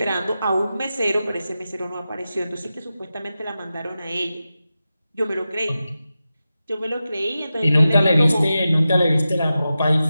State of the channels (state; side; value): inverted; both; correlation -0.92